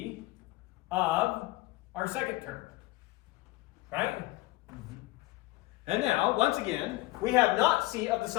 of our second term. Right? And now, once again, we have not C of the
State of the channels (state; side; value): quieter; right; 19.4 dB